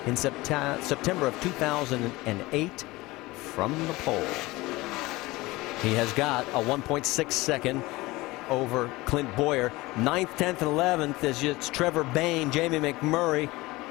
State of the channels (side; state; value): right; quieter; 20.7 dB